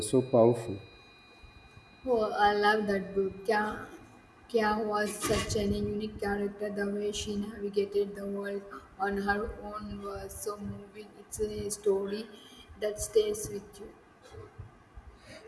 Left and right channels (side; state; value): both; identical; correlation 1.00